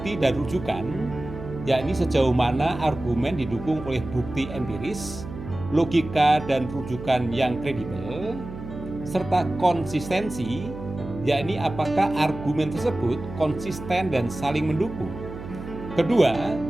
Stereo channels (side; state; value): right; noise; hum, 11 dB below the sound